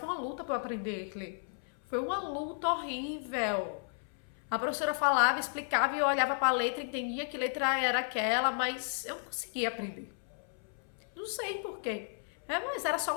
uma luta pra eu aprender a ler. Foi uma luta horrível. A professora falava, explicava e eu olhava pra letra, entendia que letra era aquela, mas eu não conseguia aprender. Não sei porquê. Mas era só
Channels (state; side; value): silent; right; 55 dB below the other